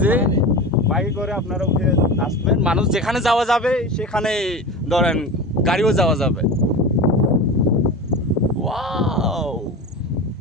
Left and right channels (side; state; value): both; normal; correlation 0.28